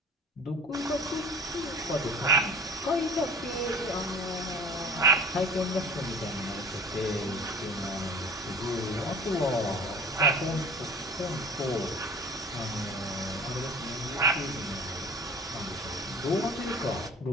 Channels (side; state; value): both; normal; correlation 0.43